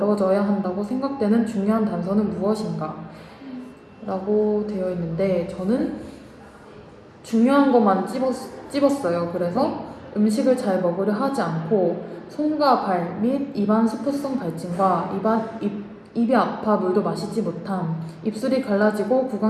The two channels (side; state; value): both; identical; correlation 1.00